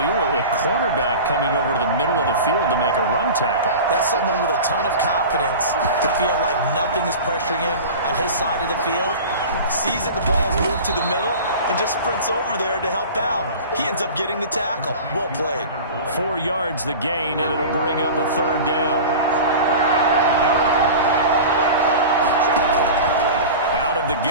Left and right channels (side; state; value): both; inverted; correlation -0.34